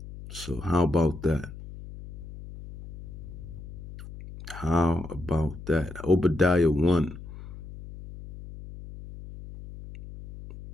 So how about that? How about that? Obadiah 1.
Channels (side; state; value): left; noise; hum, 13 dB below the sound